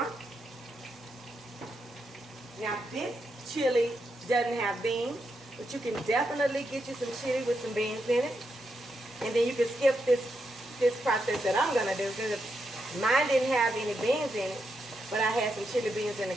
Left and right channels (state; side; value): normal; both; correlation 0.83